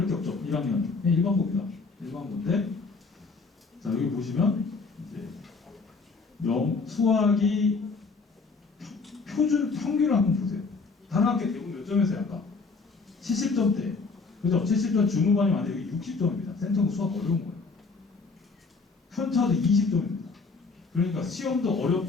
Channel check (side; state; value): right; quieter; 4.3 dB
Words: 게 없죠. 1학년 일반고입니다. 일반고인데 자 여기 보시면 이제 수학이 표준 평균을 한번 보세요. 단학교 대부분 몇 점에서요? 아까 70점대. 그죠? 70점 중후반이 많은데 여기 60점입니다. 센터고 수학 어려운 거예요. 편차도 20점입니다. 그러니까 시험도